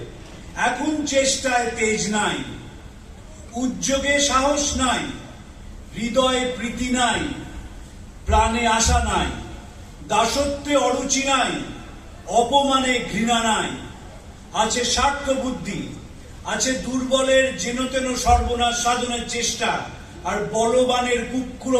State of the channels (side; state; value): both; identical; correlation 1.00